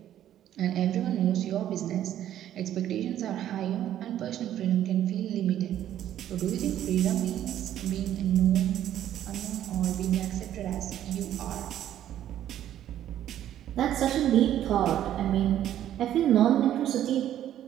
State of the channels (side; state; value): left; quieter; 11.6 dB